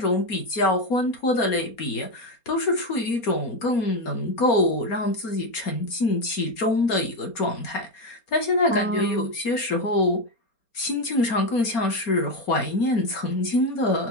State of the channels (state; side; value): late; right; 4.3 ms